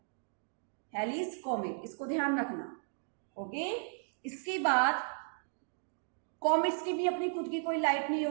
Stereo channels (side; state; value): left; silent; digital silence